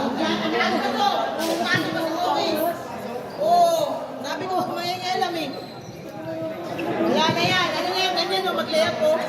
Sabi ko, may alam eh. Wala na yan. Ano na yan? Ganyan o, mag-layup po.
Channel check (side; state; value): both; identical; correlation 1.00